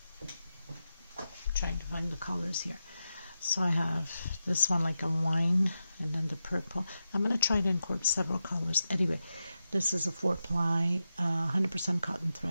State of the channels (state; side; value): inverted; both; correlation -0.90